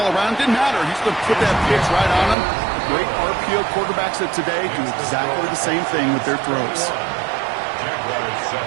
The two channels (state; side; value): drops out; left; at 2.4 s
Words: around. Didn't matter. He's going to put that pitch right on them. The great RPO quarterbacks of today do exactly the same thing with their throws.